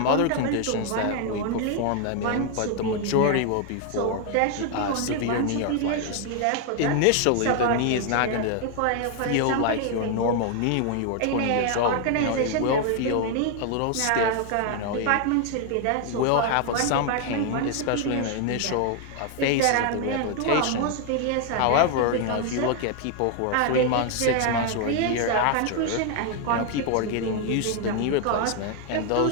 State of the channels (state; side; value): different; both; correlation 0.00